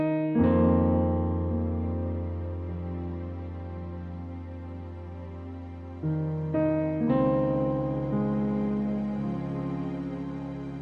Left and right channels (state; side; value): identical; both; correlation 1.00